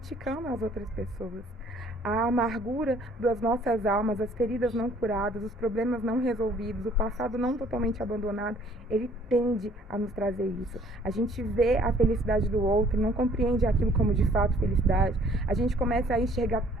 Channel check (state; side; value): normal; both; correlation 0.59